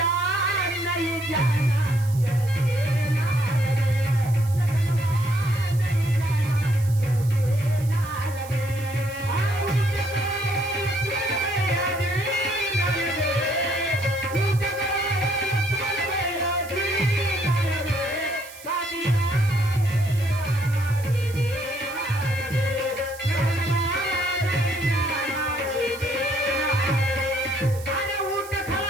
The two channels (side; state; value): right; noise; hiss, 18 dB below the sound